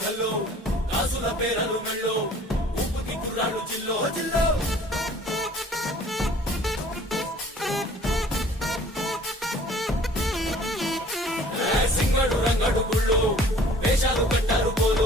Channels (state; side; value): normal; both; correlation 0.52